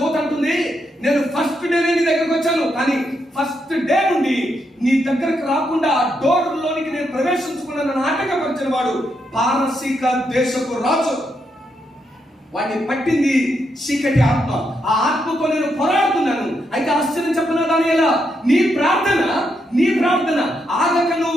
అంటుంది, నేను ఫస్ట్ డే నీ దగ్గరకు వచ్చాను, కానీ ఫస్ట్ డే నుండి నీ దగ్గరకు రాకుండా ఆ డోర్ లోనికి నేను ప్రవేశించుకున్న నాటకపరిచిన వాడు పారసీక దేశపు రాజు. వాడిని పట్టింది చీకటి ఆత్మ. ఆ ఆత్మతో నేను పోరాడుతున్నాను. అయితే ఆశ్చర్యం చెప్పనా దానియేలా, నీ ప్రార్థన ఆగక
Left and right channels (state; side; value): normal; both; correlation 0.80